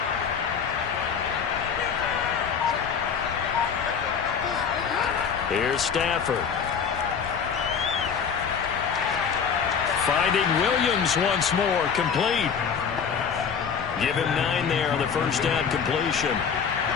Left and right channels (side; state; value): right; quieter; 6.7 dB